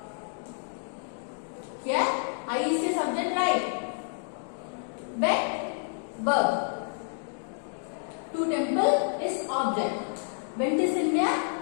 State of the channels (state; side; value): silent; right; 58 dB below the other